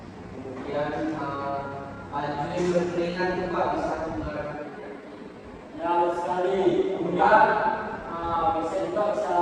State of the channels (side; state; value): both; identical; correlation 1.00